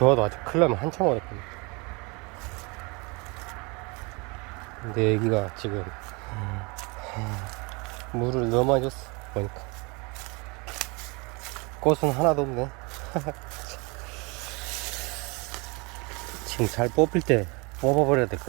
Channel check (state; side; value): quieter; left; 28.7 dB